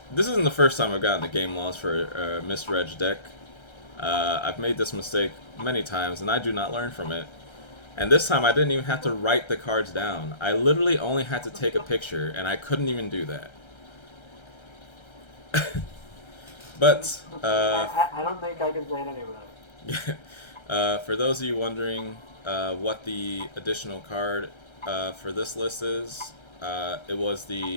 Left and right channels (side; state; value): right; late; 1.3 ms